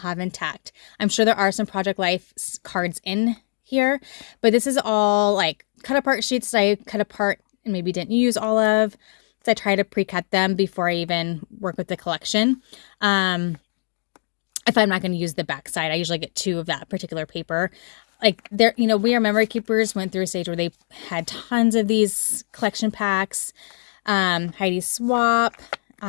intact. I'm sure there are some Project Life cards in here, but this is all like cut apart sheets that I cut apart and maybe didn't use all of. So I try to pre-cut them before I even work with the collection. If I'm not going to use the back side, I usually get 2 of that particular paper. Like We Are Memory Keepers went through a stage where they had tons of these collection packs. Heidi Swap,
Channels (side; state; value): right; silent; digital silence